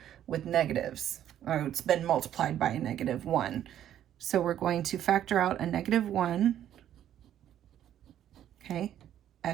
with negatives. Oh, it's been multiplied by a -1. So we're going to factor out a -1. Okay,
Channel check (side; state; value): left; quieter; 11.0 dB